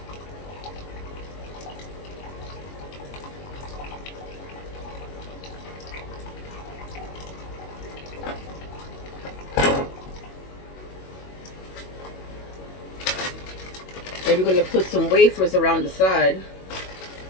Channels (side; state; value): right; late; 21 ms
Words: Then we're going to put some wafers around the side.